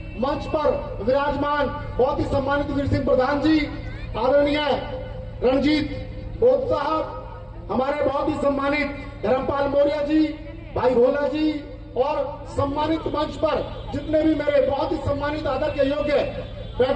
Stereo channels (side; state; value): both; identical; correlation 1.00